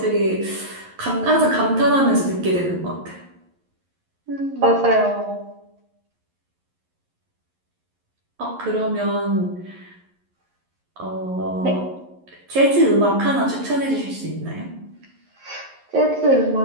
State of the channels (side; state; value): left; late; 11 ms